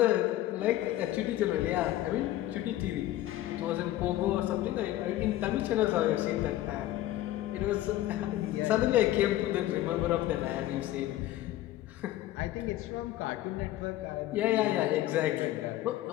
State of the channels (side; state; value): right; quieter; 14.6 dB